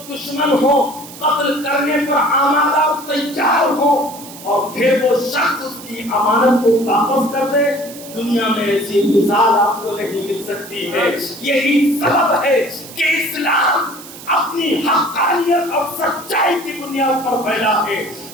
دشمن ہوں، قتل کرنے پر آمادہ اور تیار ہوں، اور پھر وہ شخص اس کی امانت کو واپس کر دے؟ دنیا میں ایسی مثال آپ کو نہیں مل سکتی ہے۔ یہی سبب ہے کہ اسلام اپنی حقانیت اور سچائی کی بنیاد پر پھیلا ہے۔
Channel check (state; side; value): noise; right; hiss, 16 dB below the sound